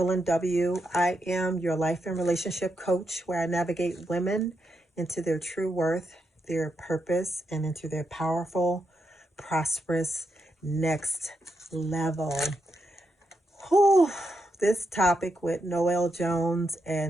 W. I am your life and relationship coach where I navigate women into their true worth, their purpose, and into their powerful, prosperous next level. Whew, this topic with Noel Jones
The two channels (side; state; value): both; normal; correlation 0.83